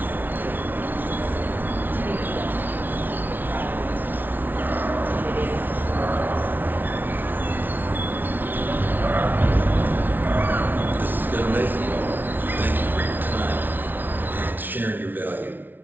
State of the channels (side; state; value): left; late; 0.089 ms